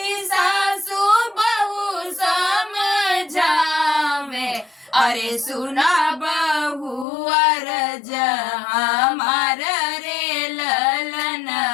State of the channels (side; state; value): right; drops out; at 7.1 s